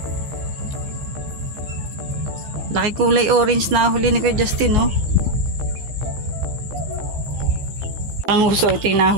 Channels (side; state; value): left; late; 15 ms